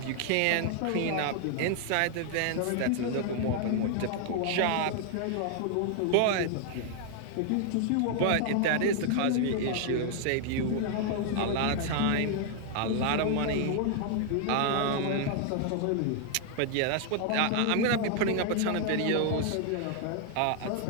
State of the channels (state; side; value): different; both; correlation 0.00